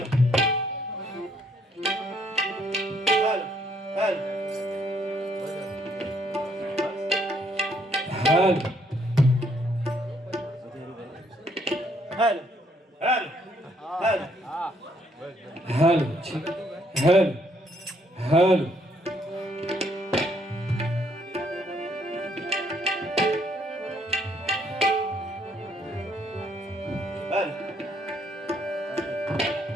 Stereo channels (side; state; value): both; normal; correlation 0.69